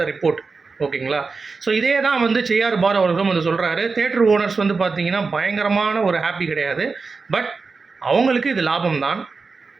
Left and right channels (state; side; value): quieter; left; 4.4 dB